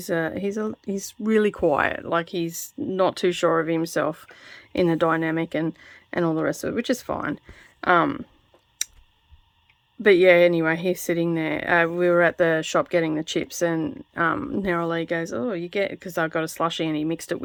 really quiet. Like, he's not too sure of himself in the dynamic and all the rest of it, which is fine. But yeah, anyway, he's sitting there. We were at the shop getting the chips, and Neroli goes, "Oh, you get," because I got a slushie and he mixed it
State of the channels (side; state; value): both; identical; correlation 1.00